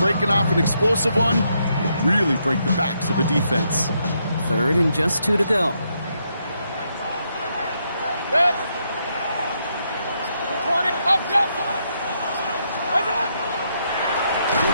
off an explosive one, you really break the backs of a defense. 3rd and just 2 to go. On the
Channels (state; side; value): inverted; both; correlation -0.78